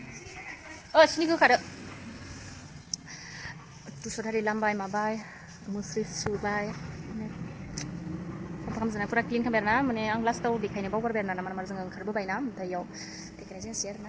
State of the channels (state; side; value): identical; both; correlation 1.00